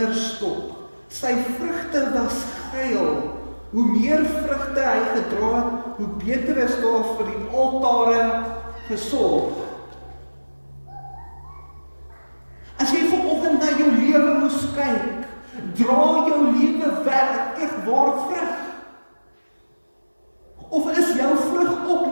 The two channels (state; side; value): inverted; both; correlation -1.00